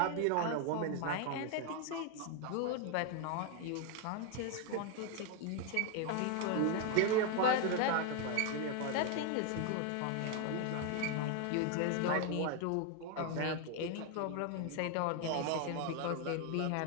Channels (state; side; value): different; both; correlation 0.01